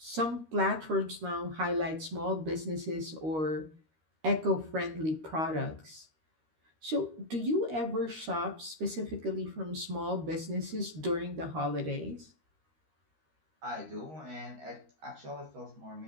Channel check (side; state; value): left; late; 13 ms